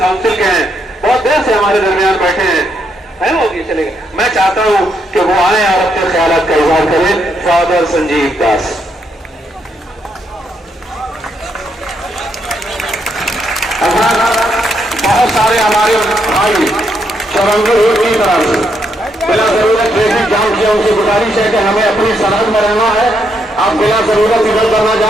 के हैं, बहुत देर से हमारे दरमियान बैठे हैं, है वो भी चलेगा। मैं चाहता हूं कि वो आए और अपने ख्यालात का इजहार करें। फादर संजीव दास। बहुत सारे हमारे भाई चौरंगी रोड की तरफ से बिला जरूरत ट्रैफिक जाम किया, उनसे गुजारिश है कि हमें अपनी सरहद में रहना है, आप बिला जरूरत इधर करना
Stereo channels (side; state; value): both; normal; correlation 0.77